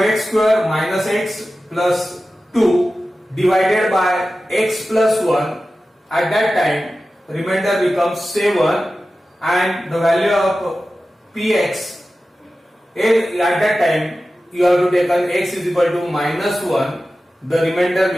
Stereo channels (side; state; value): both; normal; correlation 0.94